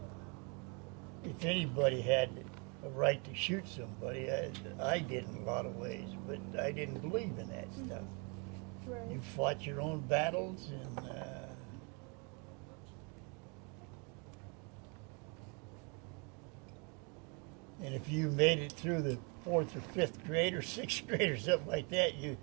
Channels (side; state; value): left; quieter; 33.5 dB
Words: If anybody had a right to shoot somebody, I did in a lot of ways, but I didn't believe in that stuff. Right. You fought your own battles, and if you made it through the 4th or 5th grade or 6th grade or something like that, you